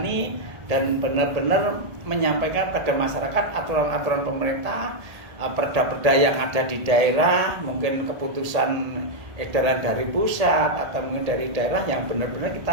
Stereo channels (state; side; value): late; left; 1.8 ms